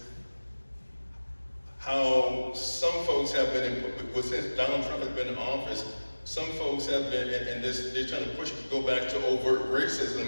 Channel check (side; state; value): both; inverted; correlation -1.00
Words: how some folks have been, since Donald Trump has been in office, some folks have been, and they're trying to go back to overt